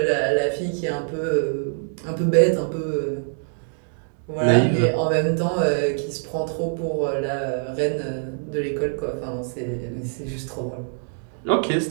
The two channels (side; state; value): left; silent; digital silence